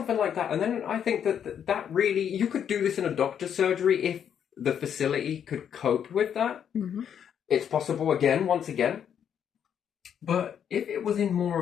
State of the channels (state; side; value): quieter; right; 8.6 dB